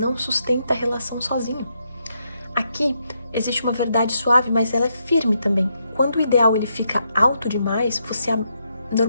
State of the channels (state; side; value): inverted; both; correlation -0.79